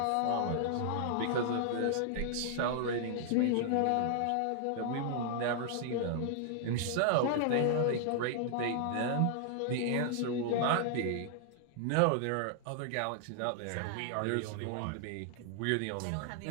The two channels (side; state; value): both; different; correlation 0.00